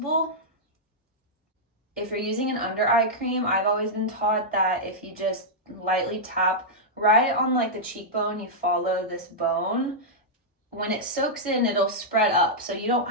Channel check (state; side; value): normal; both; correlation -0.08